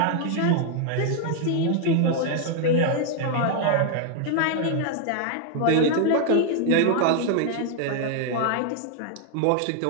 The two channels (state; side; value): different; both; correlation 0.00